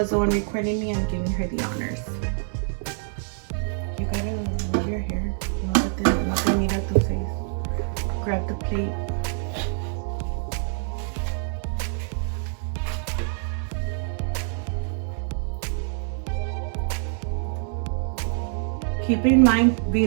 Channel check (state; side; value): silent; left; digital silence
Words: the one recording me, I'm giving her the honors. You gotta move your hair. No te mira tu face. Grab the plate. Keep in mind,